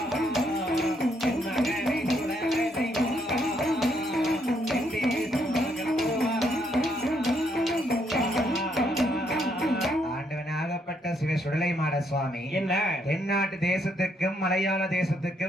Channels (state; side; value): normal; both; correlation 0.73